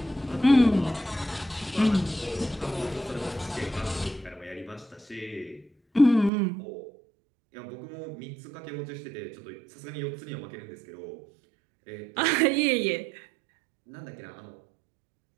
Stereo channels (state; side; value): drops out; left; at 6.3 s